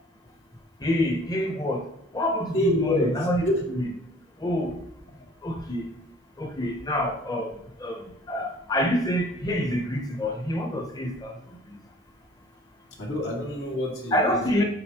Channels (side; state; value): both; normal; correlation 0.51